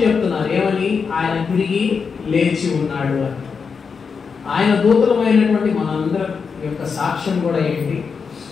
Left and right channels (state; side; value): quieter; right; 5.6 dB